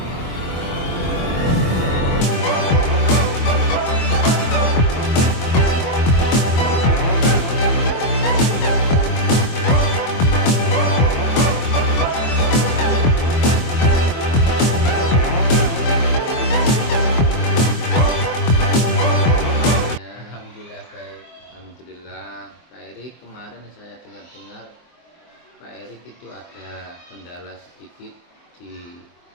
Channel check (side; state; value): right; late; 24 ms